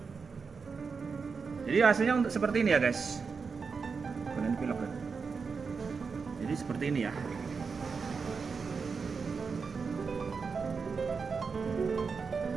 Jadi hasilnya untuk seperti ini ya guys. Kalian pilok kan. Jadi seperti ini ya.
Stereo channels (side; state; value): left; quieter; 5.2 dB